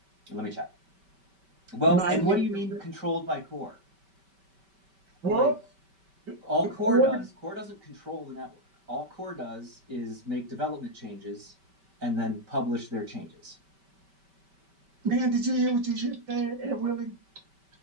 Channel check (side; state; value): left; late; 5.2 ms